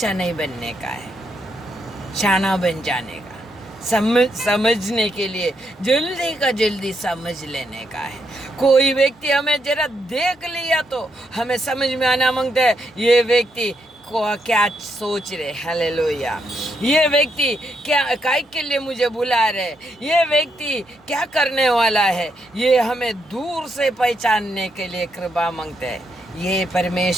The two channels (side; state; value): both; normal; correlation 0.78